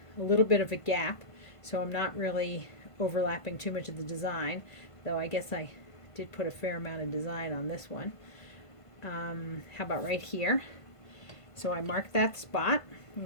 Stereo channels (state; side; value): late; right; 1.5 ms